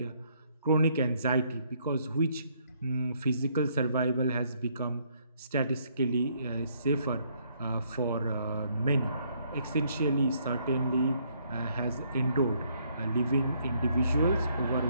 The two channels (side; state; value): both; inverted; correlation -0.69